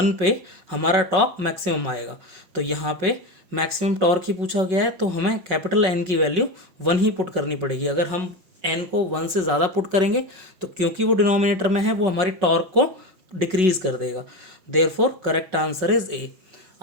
पे हमारा टॉर्क मैक्सिमम आएगा। तो यहाँ पे मैक्सिमम टॉर्क ही पूछा गया है, तो हमें कैपिटल N की वैल्यू 1 ही पुट करनी पड़ेगी। अगर हम n को 1 से ज़्यादा पुट करेंगे तो क्योंकि वो डिनोमिनेटर में है, वो हमारी टॉर्क को डिक्रीज कर देगा। Therefore correct answer is A.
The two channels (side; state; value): left; late; 5.4 ms